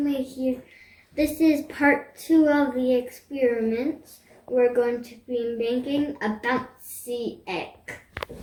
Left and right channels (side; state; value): both; identical; correlation 1.00